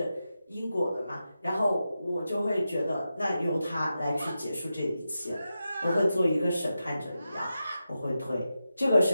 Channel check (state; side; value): inverted; both; correlation -0.90